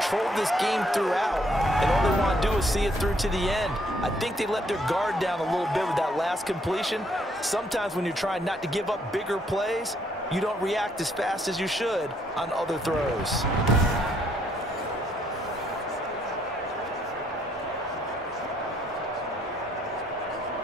this game throughout, and all they want to do is see it through to the end. I think they let their guard down a little bit with that last completion. Sometimes when you're trying not to give up bigger plays, you don't react as fast as you should on other throws.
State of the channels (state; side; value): normal; both; correlation 0.69